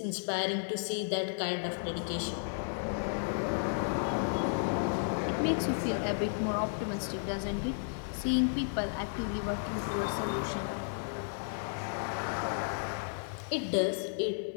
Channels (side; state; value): right; silent; digital silence